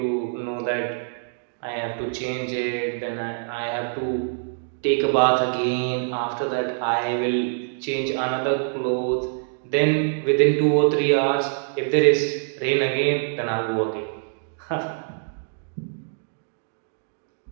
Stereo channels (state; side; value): silent; left; digital silence